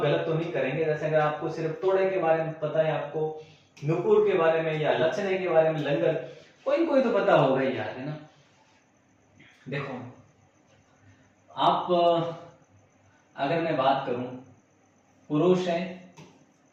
गलत तो नहीं करेंगे। जैसे अगर आपको सिर्फ तोड़े के बारे में पता है, आपको नूपुर के बारे में या लचने के बारे में, लंगर, कोई तो पता होगा ही यार, है ना। देखो आप अगर मैं बात करूं पुरुष है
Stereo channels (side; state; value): both; identical; correlation 1.00